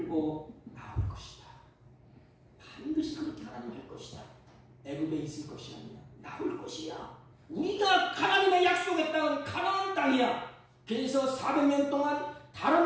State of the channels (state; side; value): identical; both; correlation 1.00